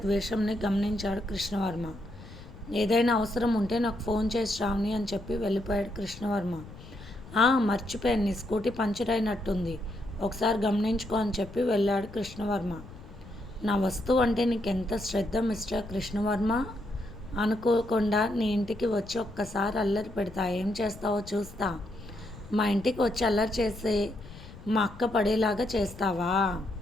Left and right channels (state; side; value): noise; left; rumble, 17 dB below the sound